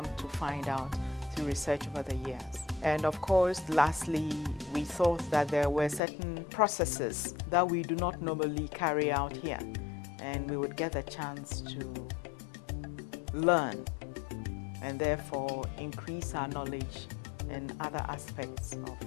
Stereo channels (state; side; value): drops out; right; at 6.0 s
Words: to find out through research over the years. And of course, lastly, we thought that there were certain processes that we do not normally carry out here, and we would get a chance to learn and therefore increase our knowledge in other aspects